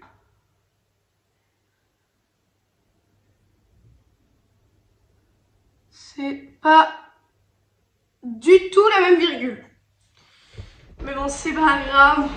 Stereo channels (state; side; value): identical; both; correlation 1.00